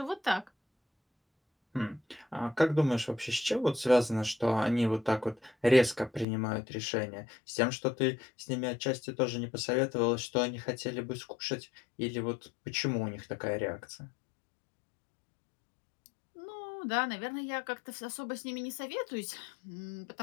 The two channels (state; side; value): drops out; right; at 6.2 s